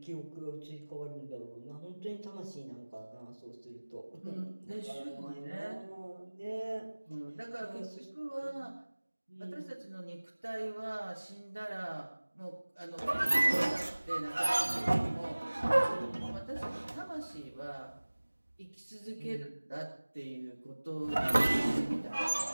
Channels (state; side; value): inverted; both; correlation -1.00